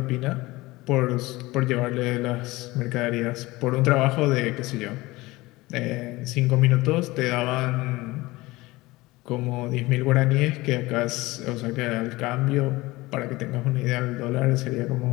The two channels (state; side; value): quieter; right; 20.4 dB